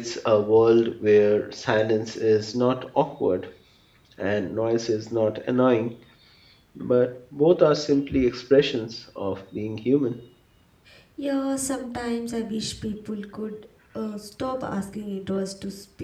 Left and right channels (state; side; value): identical; both; correlation 1.00